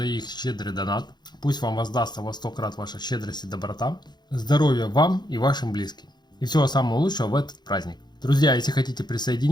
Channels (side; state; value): right; late; 0.21 ms